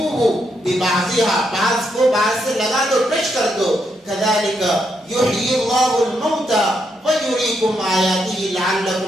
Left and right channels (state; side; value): normal; both; correlation 0.79